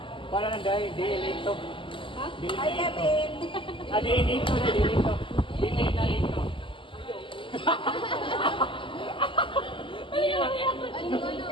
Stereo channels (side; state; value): right; late; 0.25 ms